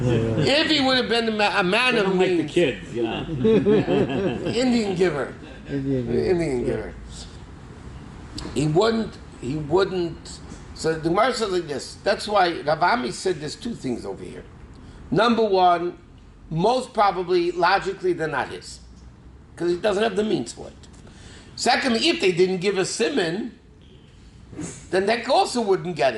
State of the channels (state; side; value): identical; both; correlation 1.00